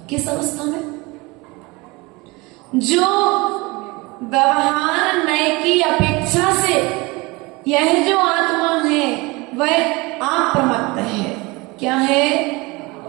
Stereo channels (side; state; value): left; quieter; 24.4 dB